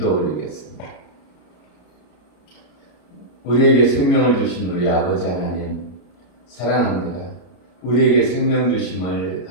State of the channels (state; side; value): late; right; 33 ms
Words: 올리겠습니다. 우리에게 생명을 주신 우리 아버지 하나님 사랑합니다. 우리에게 생명 주심을